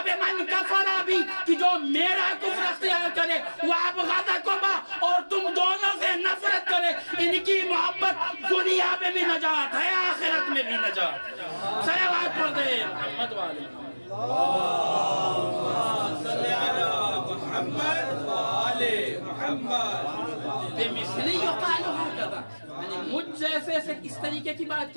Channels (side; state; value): both; inverted; correlation -1.00